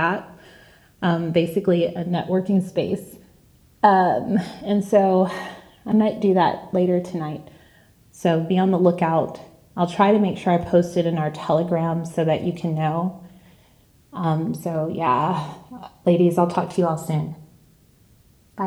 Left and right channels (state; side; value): identical; both; correlation 1.00